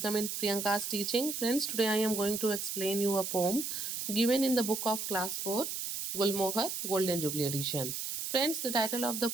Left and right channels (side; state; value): right; noise; hiss, 4 dB below the sound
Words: in Priyanka's teaching. Friends, today I am going to explain you a poem given in the book of class 4, Gulmohar Golden Jubilee edition. Friends, the title of the